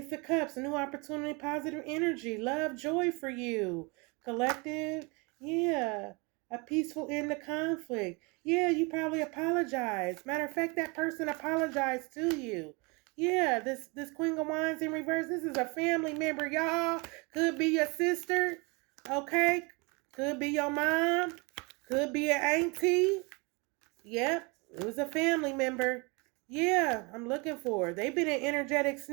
of Cups. A new opportunity. Positive energy. Love. Joy for you. Collective. Yeah. A peaceful end to conflict. Yeah, you probably apologized. Matter of fact, that person apologized to you. Yeah, this Queen of Wands in reverse. This is a family member, y'all. Could be your sister. Okay. Could be your mom. Could be an auntie. Yep. It was a family member. Yeah, I'm looking for. They've been an energetic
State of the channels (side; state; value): left; quieter; 29.1 dB